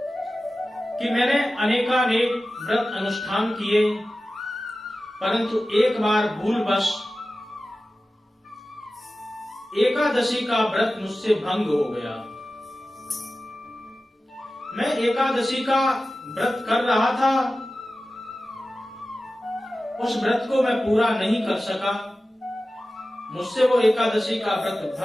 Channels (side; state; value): both; normal; correlation 0.95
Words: कि मैंने अनेकानेक व्रत अनुष्ठान किए, परंतु एक बार भूलवश एकादशी का व्रत मुझसे भंग हो गया। मैं एकादशी का व्रत कर रहा था, उस व्रत को मैं पूरा नहीं कर सका, मुझसे वो एकादशी का व्रत